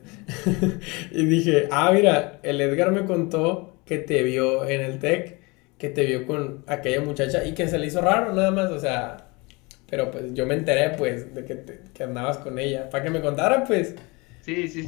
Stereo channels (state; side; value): quieter; right; 26.5 dB